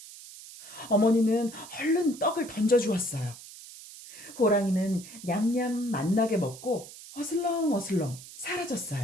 어머니는 얼른 떡을 던져주었어요. 호랑이는 냠냠 맛나게 먹고 어슬렁어슬렁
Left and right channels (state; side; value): noise; right; hiss, 16 dB below the sound